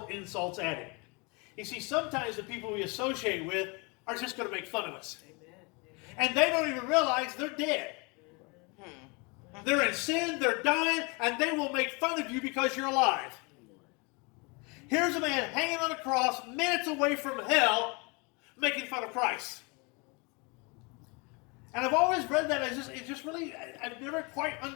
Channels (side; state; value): right; quieter; 29.8 dB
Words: insults at him. You see, sometimes the people we associate with are just going to make fun of us. And they don't even realize they're dead. They're in sin, they're dying, and they will make fun of you because you're alive. Here's a man hanging on a cross, minutes away from hell, making fun of Christ. And I've always read that as I've never quite